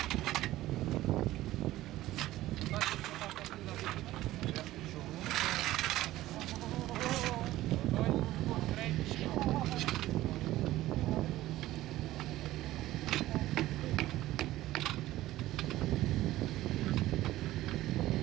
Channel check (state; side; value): quieter; left; 15.7 dB